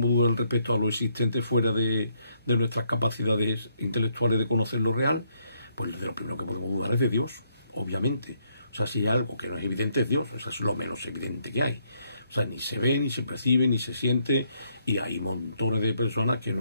dudar respecto a lo existente fuera de nuestras capacidades intelectuales de conocer lo real, pues de lo primero que podemos dudar es de Dios, obviamente. O sea, si hay algo que no es evidente es Dios, eso es lo menos evidente que hay. O sea, ni se ve, ni se percibe, ni se siente, y hay montones de personas que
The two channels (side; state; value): both; inverted; correlation -0.73